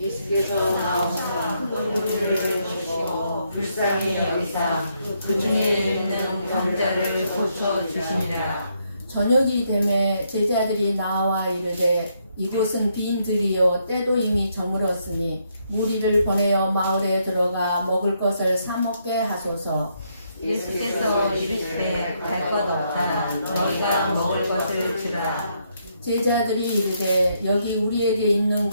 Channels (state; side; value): inverted; both; correlation -0.75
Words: 나오사 큰 무리를 보시고 불쌍히 여기사 그 중에 있는 병자를 고쳐 주시니라. 저녁이 되매 제자들이 나와 이르되 이곳은 빈 들이요 때도 이미 저물었으니 무리를 보내어 마을에 들어가 먹을 것을 사 먹게 하소서. 예수께서 이르시되 갈 것 없다. 너희가 먹을 것을 주라. 제자들이 이르되 여기 우리에게 있는